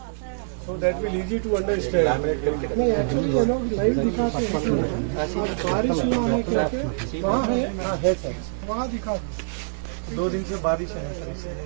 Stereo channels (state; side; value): silent; left; 62 dB below the other